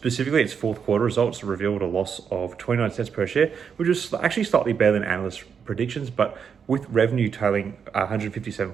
its fourth quarter results revealed a loss of 29 cents per share, which was actually slightly better than analysts' predictions, but with revenue totaling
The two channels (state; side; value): quieter; left; 6.8 dB